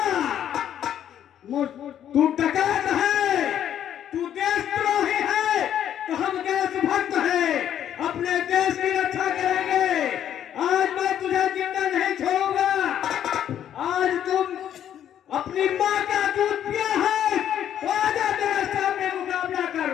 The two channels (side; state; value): right; quieter; 10.2 dB